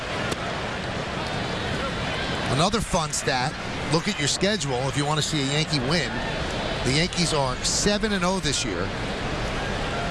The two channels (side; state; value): both; identical; correlation 1.00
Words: Another fun stat, look at your schedule if you want to see a Yankee win. The Yankees are 7-0 this year